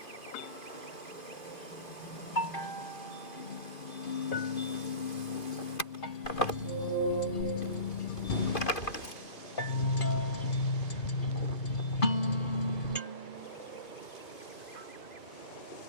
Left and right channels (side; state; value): right; late; 2.5 ms